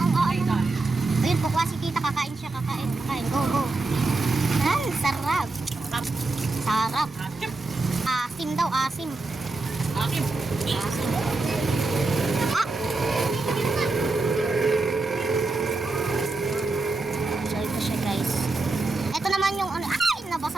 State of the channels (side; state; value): left; quieter; 3.4 dB